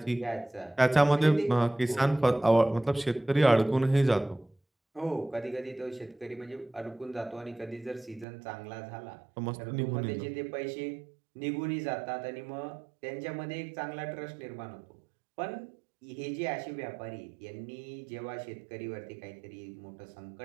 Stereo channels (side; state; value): left; drops out; at 8.2 s